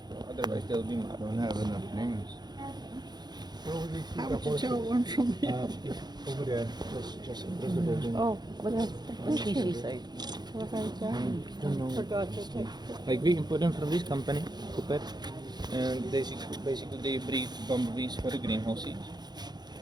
Otherwise, they'll be mad. I don't have enough names. How would you tell one from the Over there, just the building. Oh, what else? What did she say? Don't know. Forgot to take. Like we import them from this company, Cooper, and basically they breed bumblebees for the greenhouses.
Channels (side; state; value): left; late; 0.20 ms